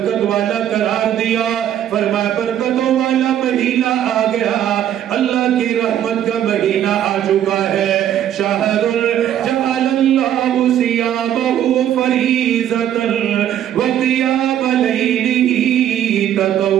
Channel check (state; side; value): quieter; left; 10.7 dB